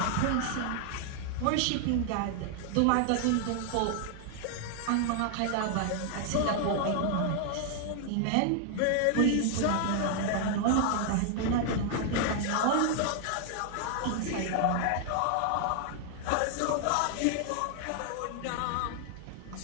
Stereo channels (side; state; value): both; different; correlation 0.00